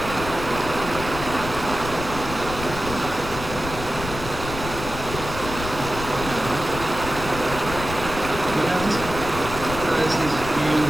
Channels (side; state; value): left; noise; rumble, 9 dB below the sound